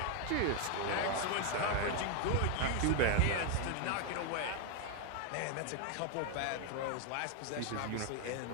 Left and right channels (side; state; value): both; different; correlation 0.01